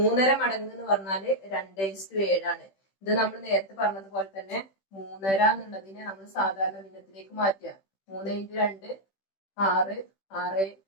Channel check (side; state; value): right; late; 15 ms